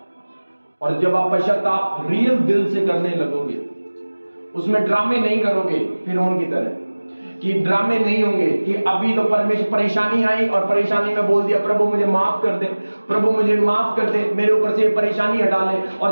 और जब आप पश्चाताप रियल दिल से करने लगोगे, उसमें ड्रामे नहीं करोगे फिरौन की तरह, कि ड्रामे नहीं होंगे कि अभी तो परमेश्वर परेशानी आई और परेशानी में बोल दिया प्रभु मुझे माफ कर दे, प्रभु मुझे माफ कर दे, मेरे ऊपर से परेशानी हटा ले,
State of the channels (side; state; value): both; inverted; correlation -1.00